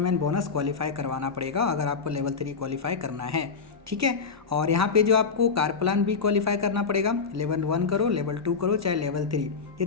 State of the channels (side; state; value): right; quieter; 5.1 dB